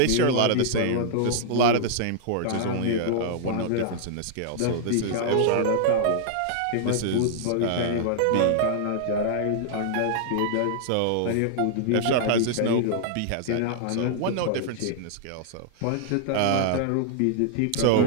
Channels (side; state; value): both; different; correlation -0.01